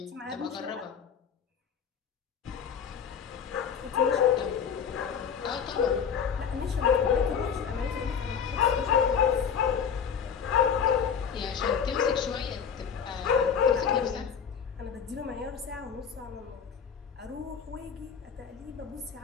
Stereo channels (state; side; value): quieter; right; 7.1 dB